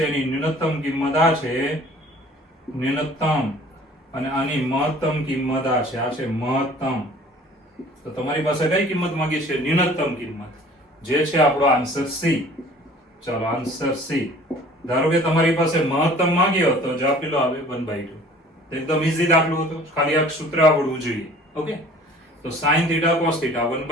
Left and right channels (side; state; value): both; normal; correlation 0.50